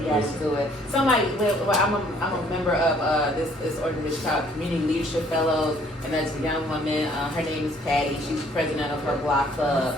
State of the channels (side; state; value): both; normal; correlation 0.61